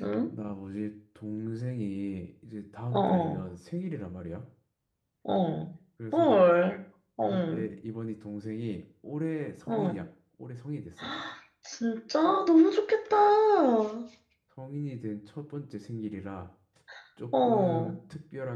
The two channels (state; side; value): identical; both; correlation 1.00